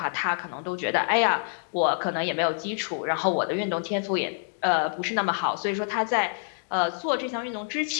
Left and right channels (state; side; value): silent; right; digital silence